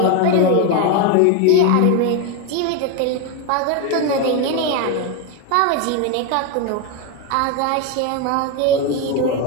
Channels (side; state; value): both; different; correlation 0.02